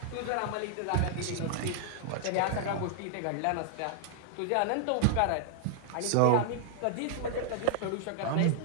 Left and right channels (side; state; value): both; different; correlation 0.00